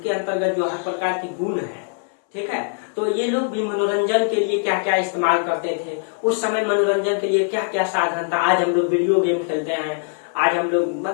अंतर्गत जो हर प्रकार की गुण है। ठीक है, तो ये लोग भी मनोरंजन के लिए क्या क्या इस्तेमाल करते थे, उस समय मनोरंजन के लिए क्या क्या साधन था। आज हम लोग वीडियो गेम खेलते हैं, आज हम लोग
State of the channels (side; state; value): right; silent; 64 dB below the other